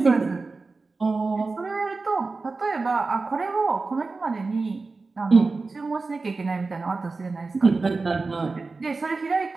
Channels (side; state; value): left; quieter; 3.9 dB